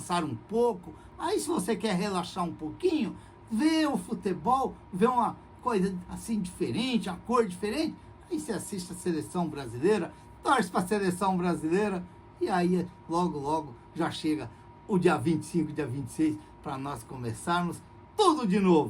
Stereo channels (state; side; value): identical; both; correlation 1.00